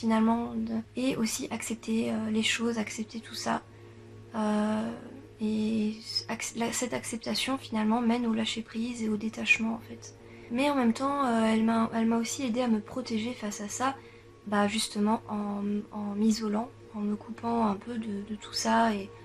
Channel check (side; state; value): both; identical; correlation 1.00